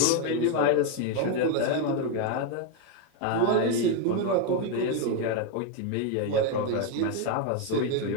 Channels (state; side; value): different; both; correlation 0.02